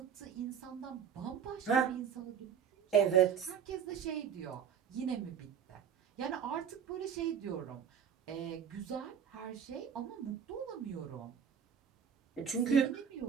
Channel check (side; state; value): left; quieter; 7.8 dB